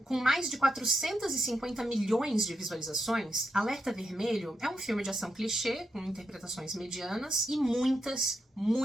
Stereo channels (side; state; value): both; normal; correlation 0.83